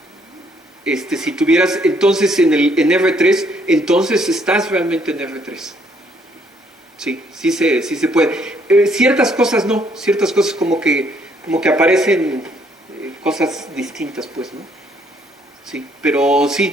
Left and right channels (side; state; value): both; normal; correlation 0.68